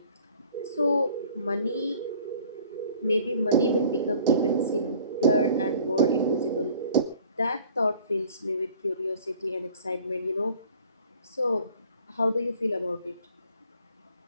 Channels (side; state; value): both; inverted; correlation -0.52